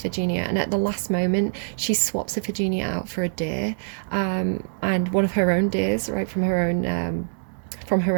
and at the last moment she swaps Iphigenia out for a deer, and one of her own deers, right, from her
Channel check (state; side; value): silent; left; 62 dB below the other